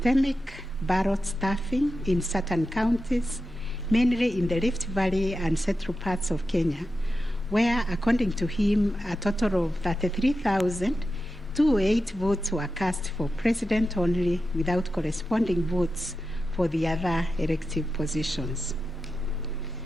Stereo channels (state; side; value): normal; both; correlation 0.91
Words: ballot stuffing in certain counties, mainly in the Rift Valley and central parts of Kenya, where, according to him, a total of 33,208 votes were cast for president only, without corresponding votes for the other elective positions.